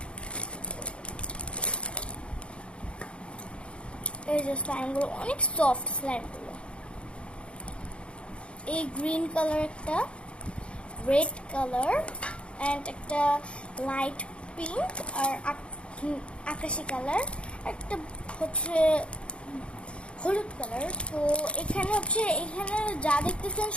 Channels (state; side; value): late; right; 0.058 ms